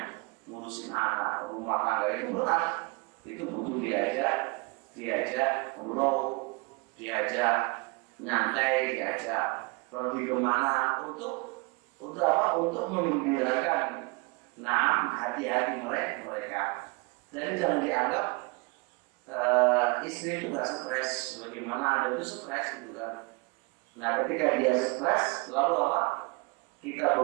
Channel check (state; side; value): quieter; left; 28.0 dB